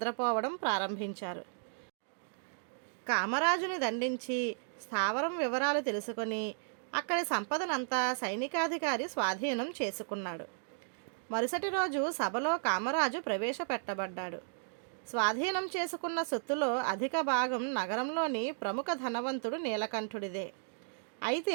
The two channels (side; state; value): left; silent; digital silence